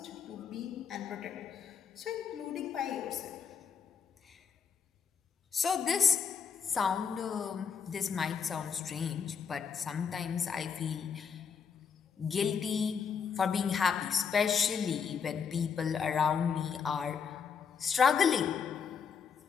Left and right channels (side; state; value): right; quieter; 6.5 dB